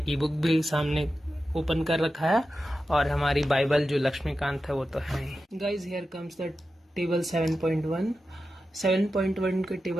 ई बुक भी सामने ओपन कर रखा है और हमारी बाइबल जो लक्ष्मीकांत है वो तो है ही। Guys, here comes the table 7.1। 7.1 के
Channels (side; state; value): both; normal; correlation 0.92